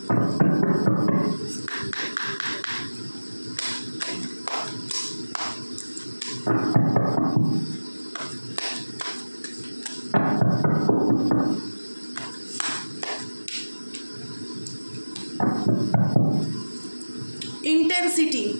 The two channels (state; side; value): inverted; both; correlation -1.00